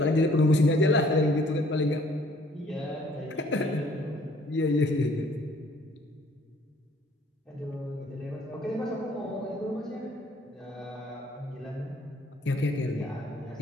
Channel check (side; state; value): both; normal; correlation 0.59